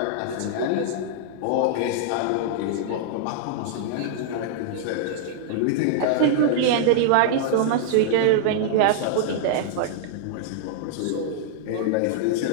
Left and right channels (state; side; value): different; both; correlation -0.01